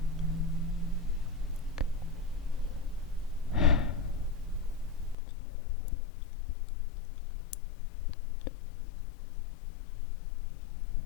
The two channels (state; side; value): drops out; right; at 5.2 s